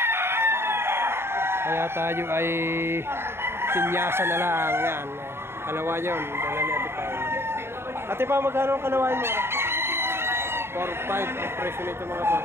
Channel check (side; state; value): left; late; 0.12 ms